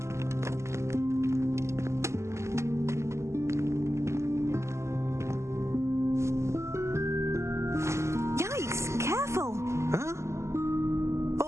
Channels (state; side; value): late; left; 0.13 ms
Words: Yikes, careful! Huh?